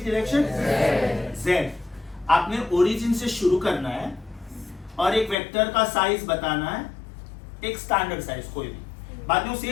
direction? Z. आपने ओरिजिन से शुरू करना है और एक वेक्टर का साइज बताना है, एक स्टैंडर्ड साइज कोई भी, बाद में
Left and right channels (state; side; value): drops out; right; at 5.4 s